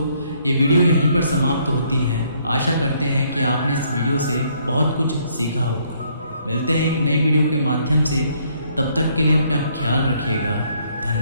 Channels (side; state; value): both; inverted; correlation -0.68